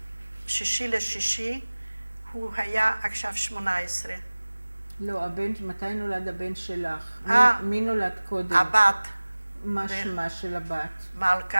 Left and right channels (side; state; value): both; inverted; correlation -1.00